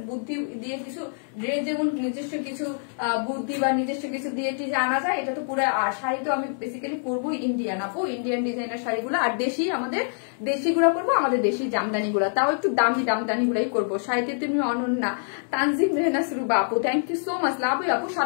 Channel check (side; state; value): right; silent; digital silence